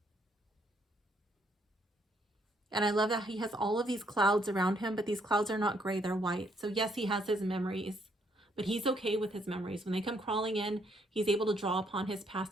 And I love that he has all of these clouds around him, but these clouds are not gray, they're white. So yes, he has his memories, but he's okay with his memories. When they come crawling in, he's able to draw upon his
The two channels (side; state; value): both; normal; correlation 0.70